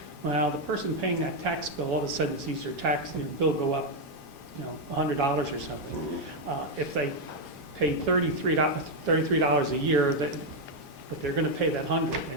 Well, the person paying that tax bill, all of a sudden sees their tax, bill go up, $100 or something. If they pay $33 a year, but they're going to pay that 100,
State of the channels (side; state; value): both; normal; correlation 0.02